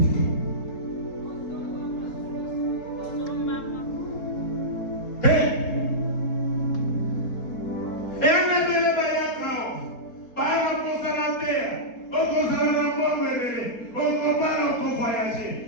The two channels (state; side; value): late; right; 4.2 ms